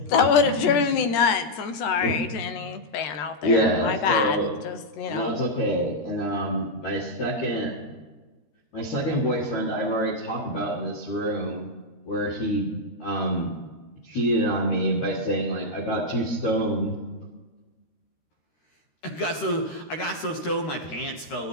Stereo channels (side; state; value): right; late; 13 ms